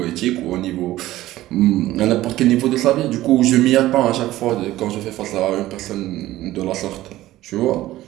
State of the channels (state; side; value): quieter; left; 15.7 dB